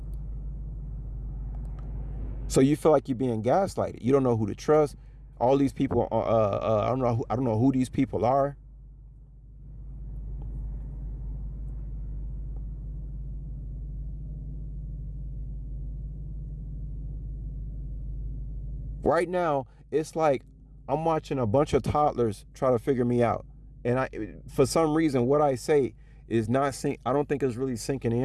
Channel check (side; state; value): both; identical; correlation 1.00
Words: So you feel like you're being gaslighted. You don't know who to trust. All these people, I don't know who these people are. Right now, it's like I'm watching a bunch of toddlers try to figure me out. And for some reason, what I say is not I don't think it's really sinking